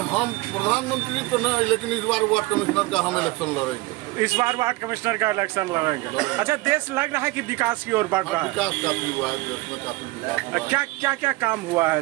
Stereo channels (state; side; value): quieter; left; 21.4 dB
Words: हम प्रधानमंत्री तो नहीं, लेकिन इस बार वार्ड कमिश्नर का हम इलेक्शन लड़ेंगे। इस बार वार्ड कमिश्नर का इलेक्शन लड़ेंगे। अच्छा, देश लग रहा है कि विकास की ओर बढ़ रहा है? विकास काफी हुआ है देश में, काफी विकास हुआ है। क्या क्या काम हुआ है